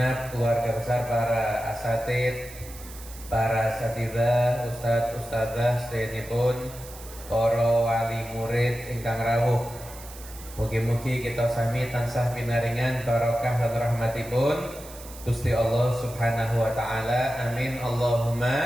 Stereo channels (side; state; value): right; noise; hiss, 17 dB below the sound